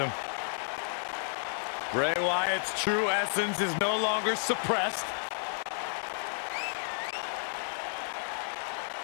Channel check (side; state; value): right; silent; 57 dB below the other